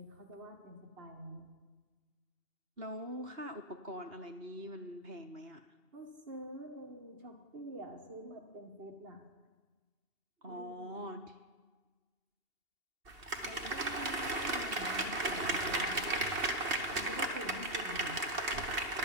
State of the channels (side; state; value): left; late; 2.8 ms